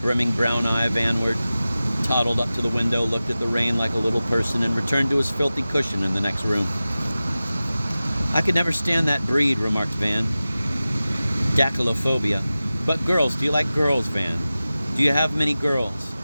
brown eye vanward, toddled up to the window, looked at the rain like a little person, and returned to his filthy cushion in the next room. I could never stand that breed, remarked Van. Dactylophobia. But girls, do you like girls, Van? Do you have many girls?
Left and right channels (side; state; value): both; inverted; correlation -0.96